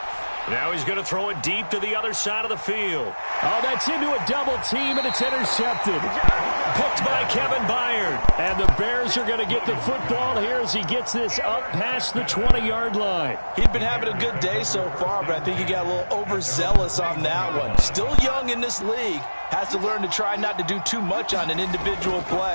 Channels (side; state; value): both; inverted; correlation -1.00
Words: Now he's going to throw it deep to the other side of the field. Oh, that's into a double team, and it's intercepted. Picked by Kevin Byard. And the Bears are going to get the football here as he gets this up past the 20-yard line. He'd been having a good day so far, but I think he got a little overzealous on that one. Still young in this league. Has to learn to try not to do too much on an individual